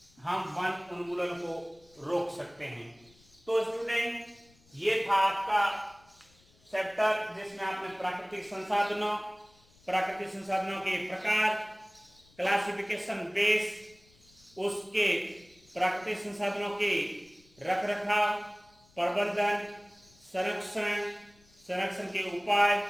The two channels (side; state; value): left; noise; rumble, 30 dB below the sound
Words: हम वन उन्मूलन को रोक सकते हैं। तो स्टूडेंट, ये था आपका चैप्टर जिसमें आपने प्राकृतिक संसाधनों के प्रकार, क्लासिफिकेशन बेस, उसके प्राकृतिक संसाधनों के रखरखाव, प्रबंधन, संरक्षण के उपाय,